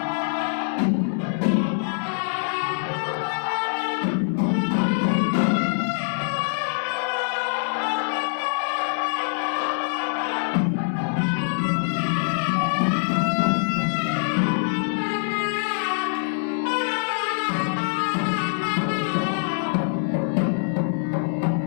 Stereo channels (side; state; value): right; silent; digital silence